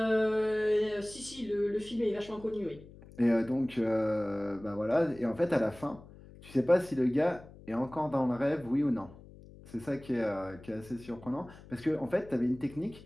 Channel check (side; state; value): left; noise; hum, 20 dB below the sound